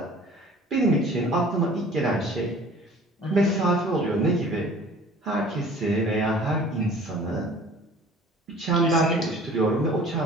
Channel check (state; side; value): normal; both; correlation 0.48